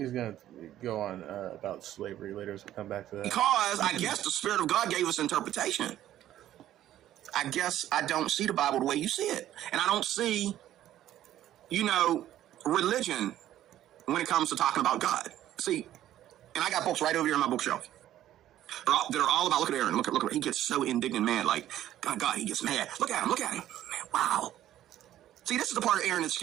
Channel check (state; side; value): quieter; left; 12.6 dB